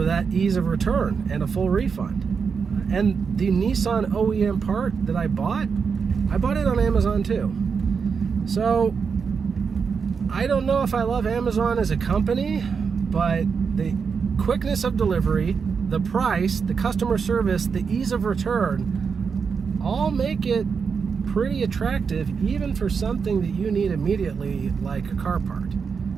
that ease of return and a full refund. And the Nissan OEM part that I bought it on Amazon too. So I don't know if I love Amazon as a company, but the quickness of delivery, the price, the customer service, the ease of return, all make it pretty attractive, even for something that you need immediately, like a car part.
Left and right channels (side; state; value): left; quieter; 5.8 dB